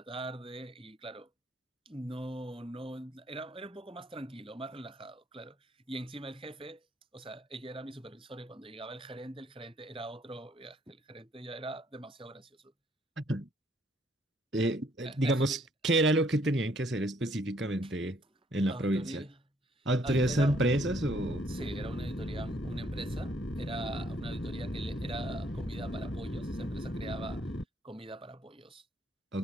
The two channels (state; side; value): normal; both; correlation 0.67